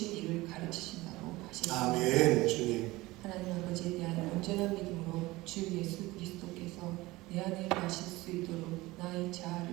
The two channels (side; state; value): left; quieter; 19.9 dB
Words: 일을 가르치신다고 하셨습니다. 아멘. 주님, 하나님 아버지에 대한 온전한 믿음으로 주 예수 그리스도께서 내 안에 가실 수 있도록 나의